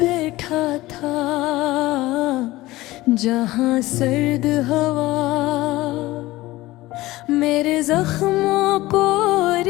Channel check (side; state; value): right; quieter; 18.3 dB